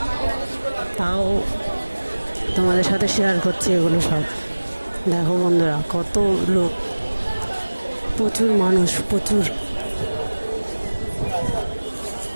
তাও তোমাদের সাথে শেয়ার করছি এগুলো সব। দেখো বন্ধুরা কত লোক, প্রচুর মানুষ, প্রচুর।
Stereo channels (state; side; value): inverted; both; correlation -1.00